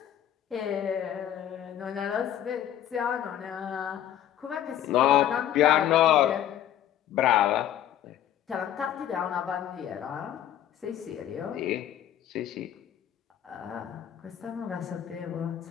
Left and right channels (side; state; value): right; quieter; 11.0 dB